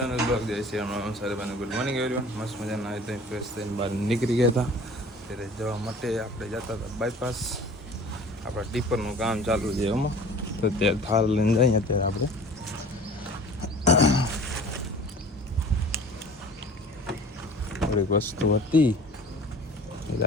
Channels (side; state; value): both; normal; correlation 0.45